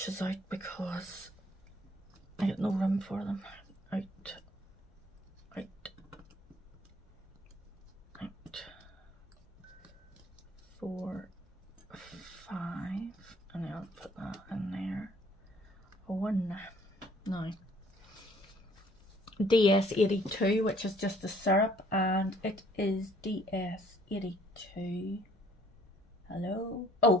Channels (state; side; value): normal; both; correlation 0.60